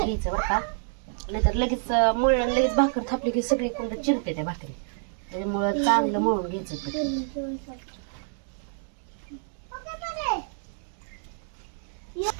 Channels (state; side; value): silent; left; digital silence